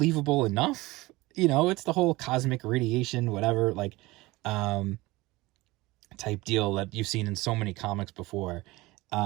enough. It's the whole cosmic radiation, whatever, like, type deal that you've seen in so many comics before.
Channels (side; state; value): left; quieter; 20.7 dB